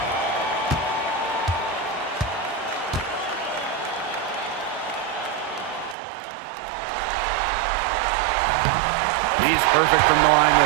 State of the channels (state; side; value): drops out; left; at 6.0 s